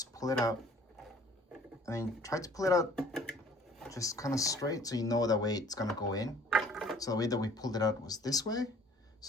pull it out. I mean, try to pull it out just kind of straight so you know that way it's gonna go in. So the way that we pulled it out was this way.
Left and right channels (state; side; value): normal; both; correlation 0.53